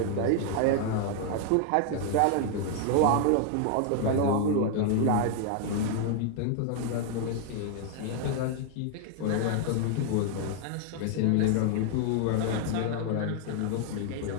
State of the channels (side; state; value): both; different; correlation 0.00